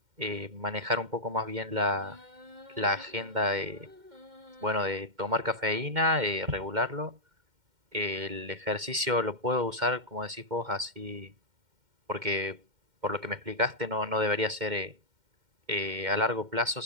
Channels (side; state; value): left; late; 2.1 ms